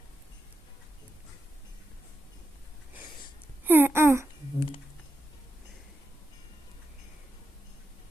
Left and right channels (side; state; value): both; normal; correlation 0.88